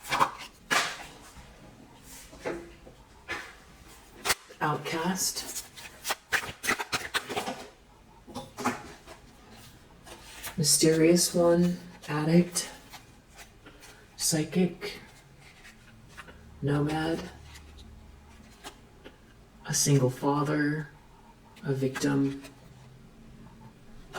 outcast, mysterious one, addict, psychic, nomad, a single father, a victim,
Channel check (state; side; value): identical; both; correlation 1.00